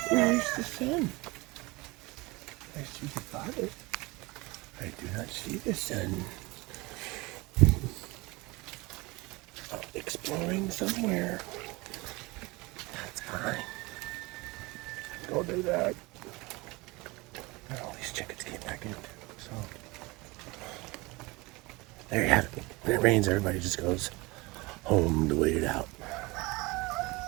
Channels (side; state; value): left; quieter; 23.8 dB